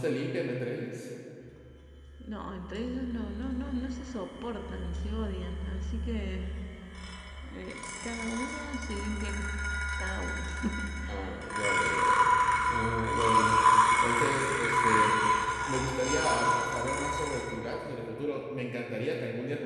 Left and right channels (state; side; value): identical; both; correlation 1.00